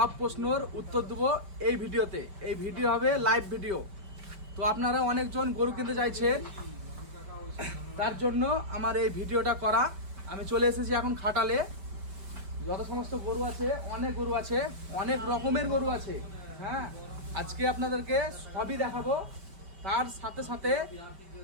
প্রশ্নের উত্তর দেব এই ভিডিওতে। এই ভিডিও হবে লাইভ ভিডিও। তো আপনারা অনেকজন গরু কিনতে চাইছেন, তার জন্য আমার এই ভিডিওটা করা। আমি চলে এসেছি এখন খাটালে। যত সমস্ত গরু আছে, অনেক গরু আছে, অনেক রকমের গরু আছে। হ্যাঁ, আজকে আপনাদেরকে সবই দেখাবো। তার সাথে সাথে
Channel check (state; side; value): late; left; 5.3 ms